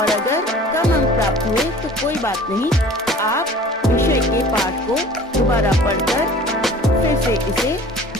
अगर कम अंक प्राप्त हुए तो कोई बात नहीं। आप विषय के पाठ को दोबारा पढ़कर फिर से इसे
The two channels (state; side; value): normal; both; correlation 0.46